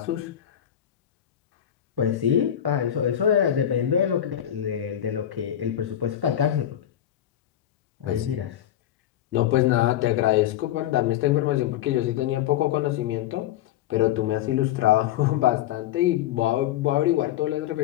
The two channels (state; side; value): quieter; right; 11.4 dB